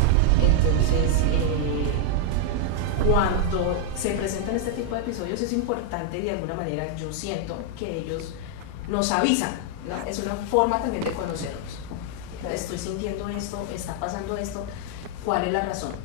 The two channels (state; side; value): different; both; correlation 0.00